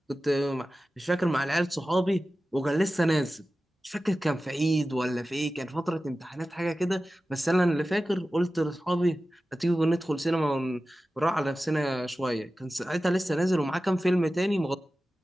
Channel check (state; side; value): normal; both; correlation 0.95